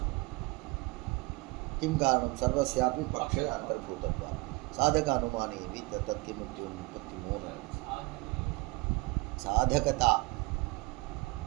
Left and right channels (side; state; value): left; quieter; 25.2 dB